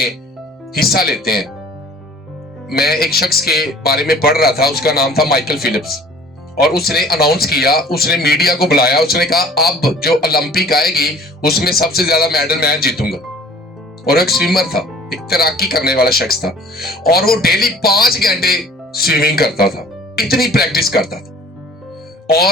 हिस्सा लेते हैं। मैं एक शख्स के बारे में पढ़ रहा था, उसका नाम था माइकल फिलिप्स, और उसने अनाउंस किया, उसने मीडिया को बुलाया, उसने कहा अब जो ओलंपिक आएगी उसमें सबसे ज्यादा मेडल मैं जीतूंगा। और एक स्विमर था, एक तैराकी करने वाला शख्स था, और वो डेली 5 घंटे स्विमिंग करता था, इतनी प्रैक्टिस करता था।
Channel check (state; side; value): normal; both; correlation 0.50